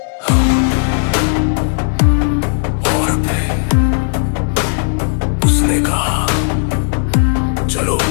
और फिर उसने कहा, चलो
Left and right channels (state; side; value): silent; right; digital silence